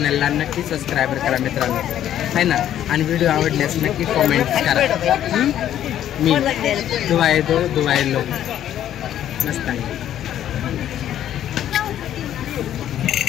नक्की सबस्क्राईबर करा मित्रांनो, आहे ना. आणि व्हिडिओ आवडल्यास नक्की कॉमेंट करा. मी दुआए दो दुआए लो. मस्त आहे.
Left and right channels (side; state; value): right; quieter; 11.2 dB